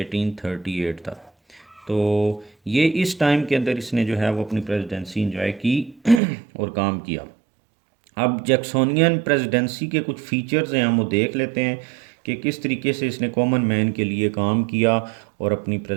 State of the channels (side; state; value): left; drops out; at 6.2 s